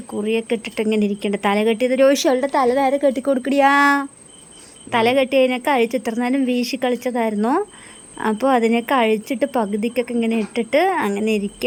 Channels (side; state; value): both; identical; correlation 1.00